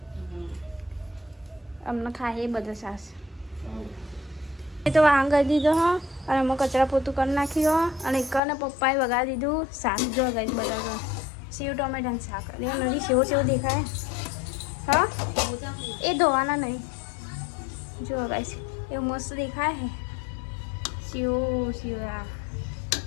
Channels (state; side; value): drops out; right; at 8.4 s